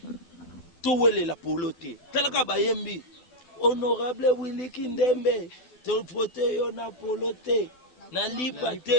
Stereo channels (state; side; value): late; right; 12 ms